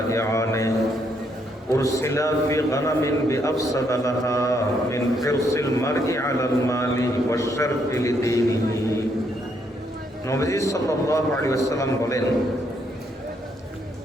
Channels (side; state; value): both; normal; correlation 0.73